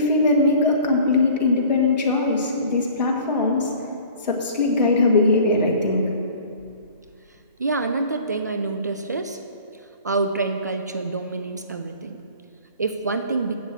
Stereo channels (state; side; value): inverted; both; correlation -0.46